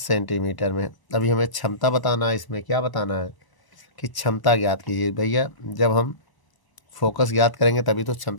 में। अभी हमें क्षमता बताना है, इसमें क्या बताना है कि क्षमता ज्ञात कीजिए। भैया जब हम फोकस ज्ञात करेंगे तभी तो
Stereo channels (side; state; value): right; late; 1.0 ms